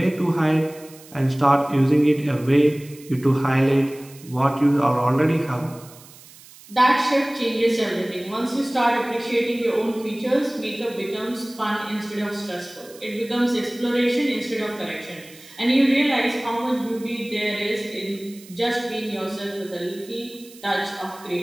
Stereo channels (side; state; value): right; noise; hiss, 21 dB below the sound